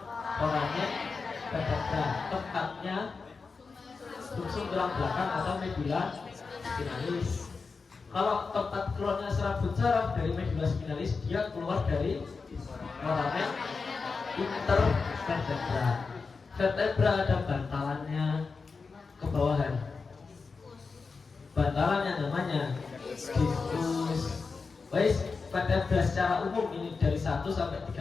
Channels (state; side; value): quieter; right; 4.6 dB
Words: foramen vertebra. Tempatnya sumsum tulang belakang atau medula spinalis. Kalau tempat keluarnya serabut saraf dari medula spinalis, dia keluar dari foramen intervertebra. Vertebra ada bantalannya ke bawahan. Bantalannya namanya diskus. Wais, vertebra secara umum ini dari 1 sampai